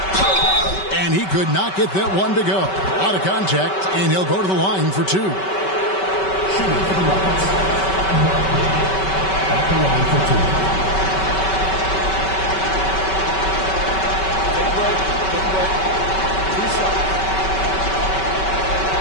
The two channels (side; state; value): right; late; 5.2 ms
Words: And he could not get that one to go. Out of contact, and he'll go to the line for two. Shooting for the Rockets. At the line for two. Take a break. Take a break. 2 shots.